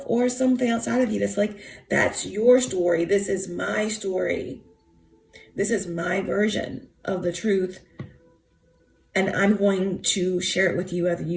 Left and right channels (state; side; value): identical; both; correlation 1.00